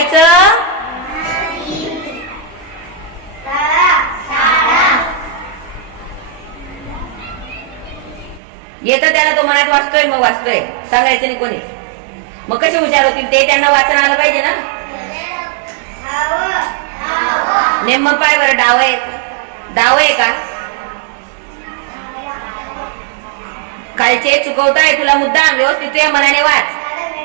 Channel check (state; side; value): drops out; left; at 8.4 s